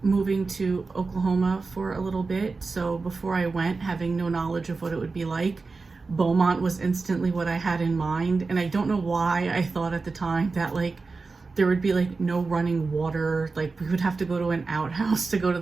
moving to Oklahoma for a little bit. So before I went, having no knowledge of what it would be like, Beaumont was instantly what I had in mind. And I don't know why I thought at the time that like there would be like no running water, like we would have to go to an outhouse to go to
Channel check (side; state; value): left; quieter; 4.1 dB